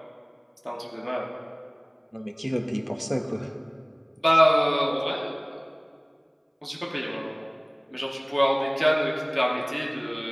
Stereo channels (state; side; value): identical; both; correlation 1.00